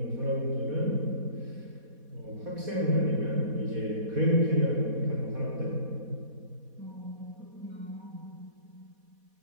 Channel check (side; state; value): left; late; 4.2 ms